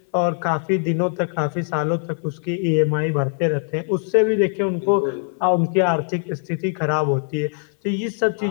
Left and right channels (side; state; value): right; silent; 65 dB below the other